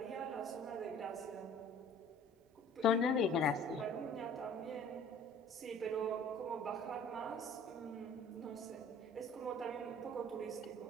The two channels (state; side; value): normal; both; correlation 0.49